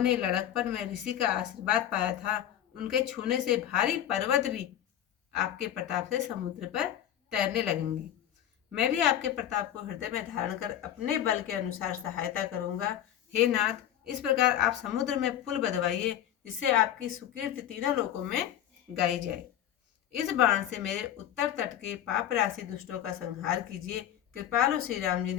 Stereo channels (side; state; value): right; quieter; 11.1 dB